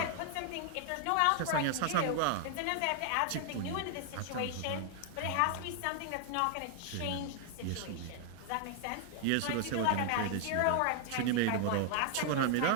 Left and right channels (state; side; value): different; both; correlation 0.00